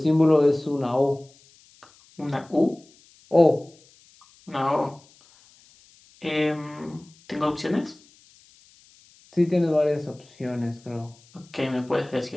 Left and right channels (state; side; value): noise; left; hiss, 29 dB below the sound